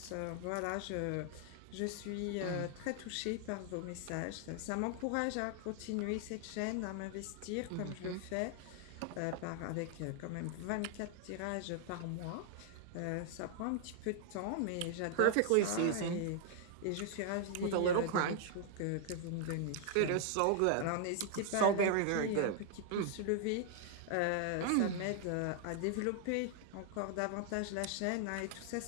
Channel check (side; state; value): both; different; correlation 0.00